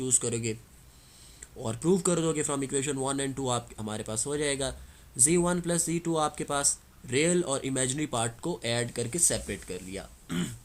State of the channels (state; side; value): identical; both; correlation 1.00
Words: करोगे और प्रूव कर दोगे फ्रॉम इक्वेशन 1 एंड 2, आप हमारे पास हो जाएगा। z1 प्लस z2 आपके पास रियल और इमेजिनरी पार्ट को ऐड करके सेपरेट कर लिया